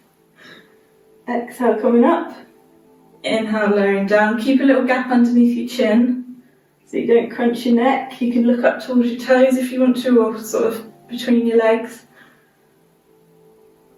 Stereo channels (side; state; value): both; identical; correlation 1.00